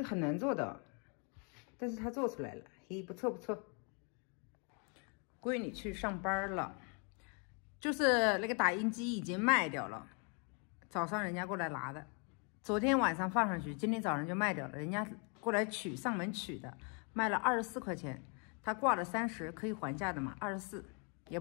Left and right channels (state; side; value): quieter; right; 36.8 dB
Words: 很难做的，但是他做出来了，嘿，不错不错。闺女去上班了，就是那个打印机已经卖掉了，早上人家过来拿的，昨天晚上放上去，今天早上就卖掉了，人家过来取上门取的，卖了24块钱，他挂了30，可以还价的嘛，24也